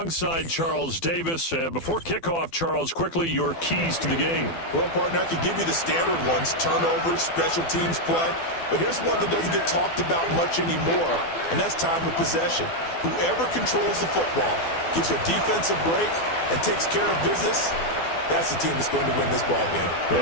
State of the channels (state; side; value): late; right; 12 ms